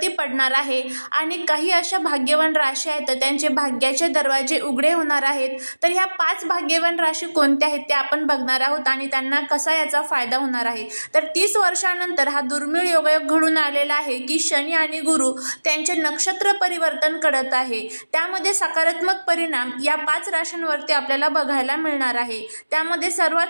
पडणार आहे आणि काही अशा भाग्यवान राशी आहेत तर त्यांचे भाग्याचे दरवाजे उघडे होणार आहेत। तर ह्या 5 भाग्यवान राशी कोणत्या आहेत ते आपण बघणार आहोत आणि त्यांना कसा याचा फायदा होणार आहे। तर 30 वर्षानंतर हा दुर्मिळ योगायोग घडून आलेला आहे की शनी आणि गुरु त्यांचे नक्षत्र परिवर्तन करत आहे। त्यामध्ये सकारात्मक परिणाम या 5 राशींवरती आपल्याला बघायला मिळणार आहे। त्यामध्ये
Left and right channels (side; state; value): both; inverted; correlation -1.00